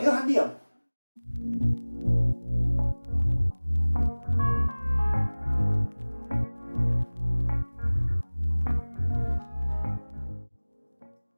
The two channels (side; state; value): both; inverted; correlation -1.00